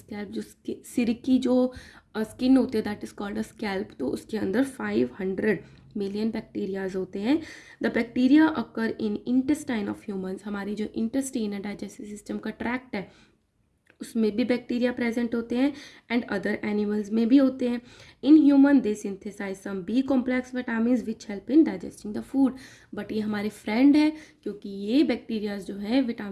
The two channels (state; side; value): identical; both; correlation 1.00